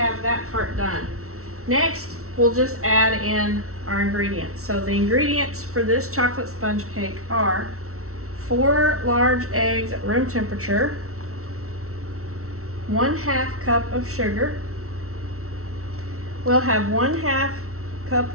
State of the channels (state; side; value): late; left; 0.63 ms